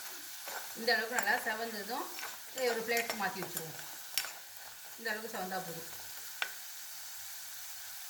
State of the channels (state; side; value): identical; both; correlation 1.00